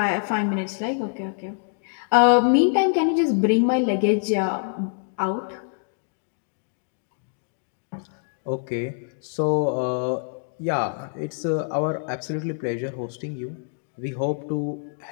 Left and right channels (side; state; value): right; silent; digital silence